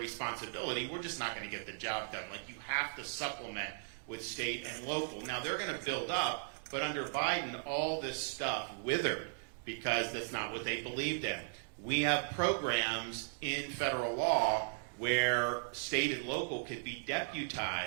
we're just not going to get the job done. Like, you have to supplement with state and local. Now, they're going to build up, but under Biden, all this stuff withered because that's not what they believed in. We have programs in federal law where state and local could be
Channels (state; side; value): silent; left; digital silence